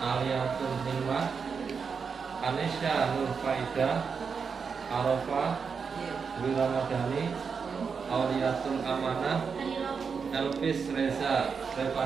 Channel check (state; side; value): quieter; left; 5.8 dB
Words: Aliatul Himah, Anisya Nur Faida, Arafah Dwi Ramadhani, Auliatul Amanah, Elvis Reza